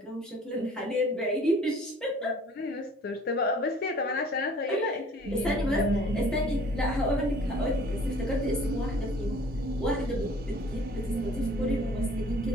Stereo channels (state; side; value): normal; both; correlation 0.52